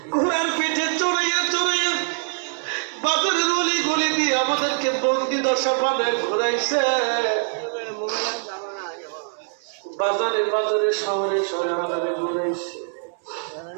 ঘোড়ার পিঠে চড়াইয়া চড়াইয়া বাজারের অলি গলি দিয়ে আমাদেরকে বন্দি দশা বানায় ঘুরাইছে, বাজারে বাজারে শহরে শহরে ঘুরাইছে।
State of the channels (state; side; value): silent; left; digital silence